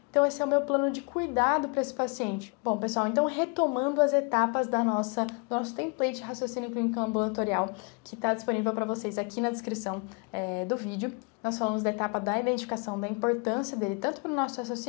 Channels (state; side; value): quieter; right; 33.4 dB